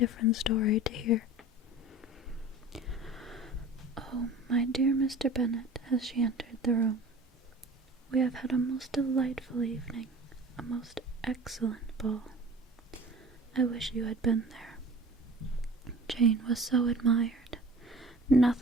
story to hear. "Oh, my dear Mr. Bennet," as she entered the room, "we have had a most delightful evening, a most excellent ball. I wish you had been there. Jane was so admired.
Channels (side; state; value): both; normal; correlation 0.42